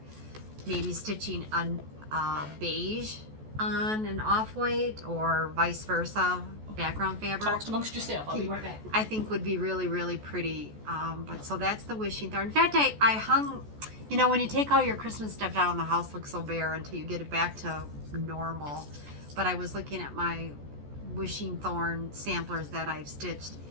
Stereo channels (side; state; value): left; late; 14 ms